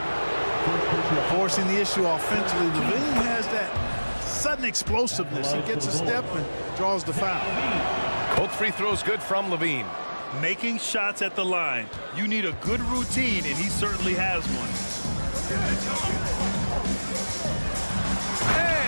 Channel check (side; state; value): both; inverted; correlation -1.00